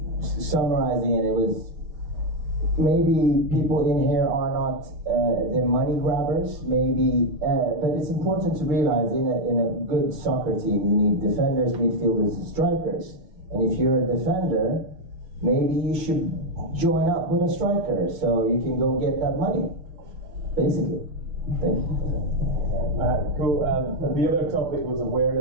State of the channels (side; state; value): left; late; 6.3 ms